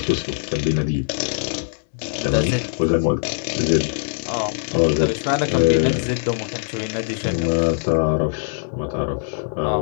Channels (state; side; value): silent; right; 64 dB below the other